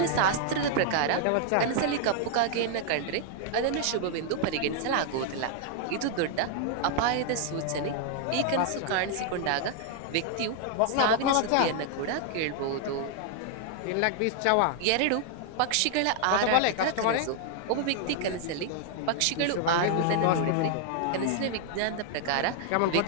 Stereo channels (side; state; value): both; different; correlation 0.00